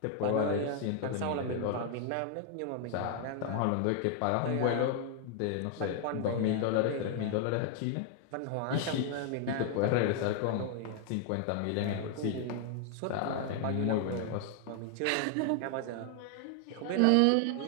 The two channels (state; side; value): different; both; correlation 0.00